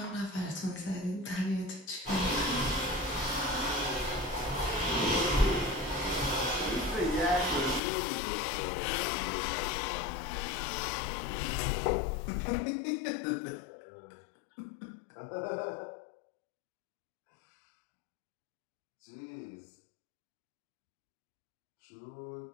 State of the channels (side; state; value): right; drops out; at 7.8 s